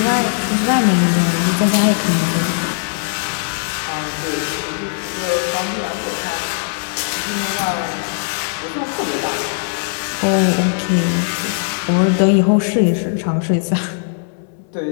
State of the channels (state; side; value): silent; right; 67 dB below the other